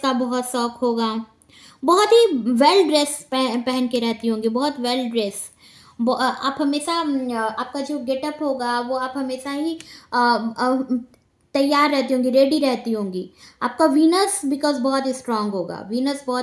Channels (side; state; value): both; identical; correlation 1.00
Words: बहुत शौक होगा, बहुत ही वेल ड्रेस पहन के रहती होंगी, बहुत वेल ड्रेस। आप हमेशा आपका जो गेटअप होगा वो आप हमेशा ही तैयार रहती होंगी, रेडी रहती होंगी। आपका वीनस बिकॉज बहुत स्ट्रांग होगा, वीनस